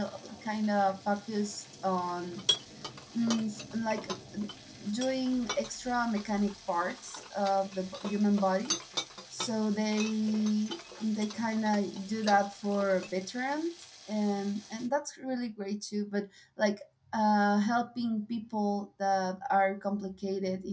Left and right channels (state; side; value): identical; both; correlation 1.00